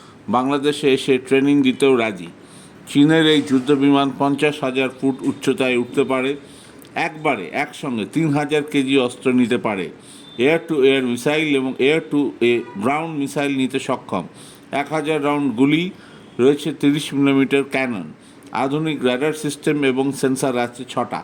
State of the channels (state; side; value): identical; both; correlation 1.00